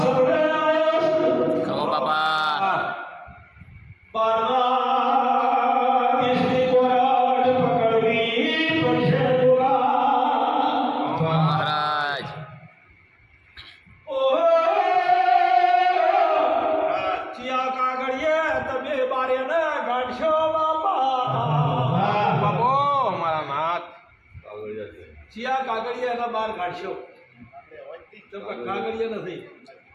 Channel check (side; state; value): both; identical; correlation 1.00